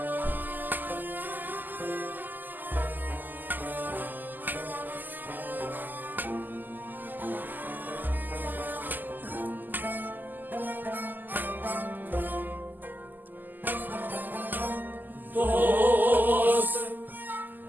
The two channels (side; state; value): left; late; 0.087 ms